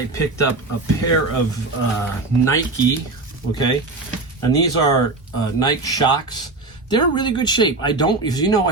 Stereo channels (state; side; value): quieter; left; 3.3 dB